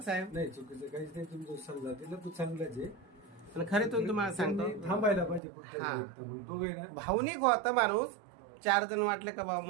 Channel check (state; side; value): drops out; left; at 5.4 s